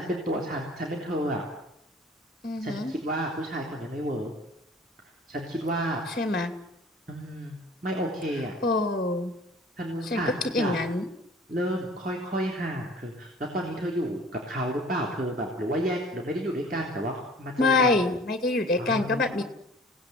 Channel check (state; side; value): normal; both; correlation 0.48